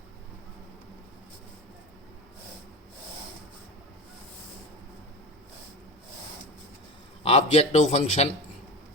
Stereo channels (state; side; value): normal; both; correlation 0.27